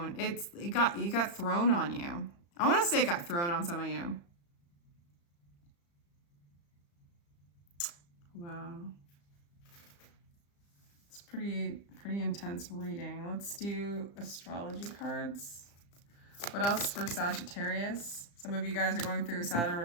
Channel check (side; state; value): right; late; 35 ms